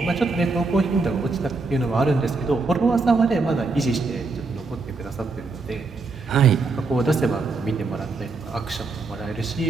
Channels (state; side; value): quieter; left; 3.8 dB